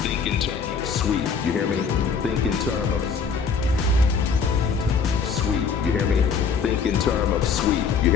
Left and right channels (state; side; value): quieter; right; 5.8 dB